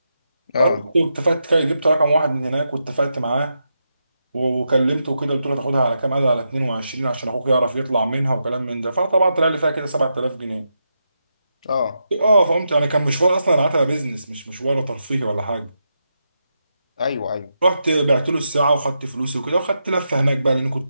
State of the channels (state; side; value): inverted; both; correlation -0.85